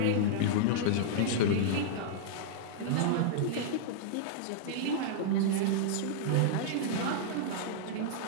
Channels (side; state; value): both; different; correlation -0.02